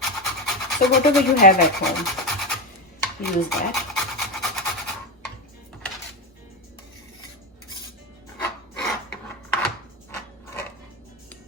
So whatever you have at home, use that.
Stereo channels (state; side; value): normal; both; correlation 0.14